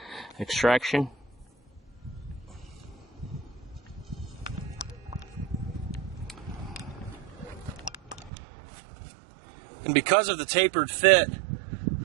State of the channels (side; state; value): left; drops out; at 8.3 s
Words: extraction. And because of the tapered fit,